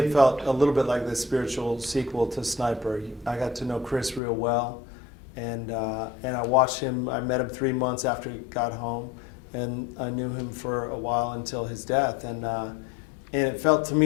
felt a little bit like the spiritual sequel to Sniper. I got to know Chris real well, and I watched him. I met him 3 months after he got home, and I knew him for a while until his death. And it felt to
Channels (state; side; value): drops out; right; at 4.2 s